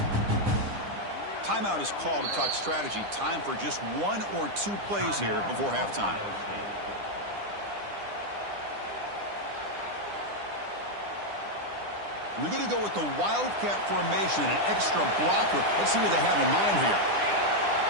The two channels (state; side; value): late; left; 9.9 ms